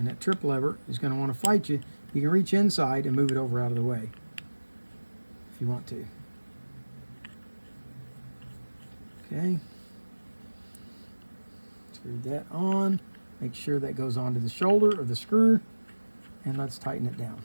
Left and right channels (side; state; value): both; inverted; correlation -1.00